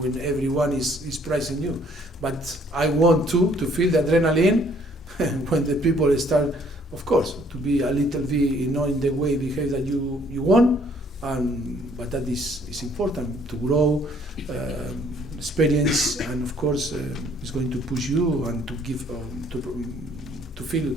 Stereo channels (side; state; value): both; normal; correlation 0.62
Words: when everyone is praising you. But I want to feel the adrenaline when the people start, of course, to be a little bit, in the way behave that you want. But that is important to grow, experience, and of course, it's going to push you and to give to feel